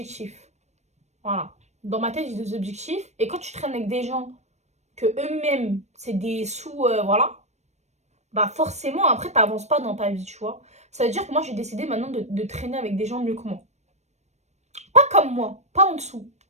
Voilà. Dans ma tête, j'ai des objectifs. Et quand tu traînes avec des gens que eux-mêmes, c'est des sous, voilà, bah forcément, après, t'avances pas dans ta vie, tu vois. Ça veut dire que moi, j'ai décidé maintenant de traîner avec des gens mieux que moi. Pas comme moi, pas en dessous,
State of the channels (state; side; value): late; left; 0.32 ms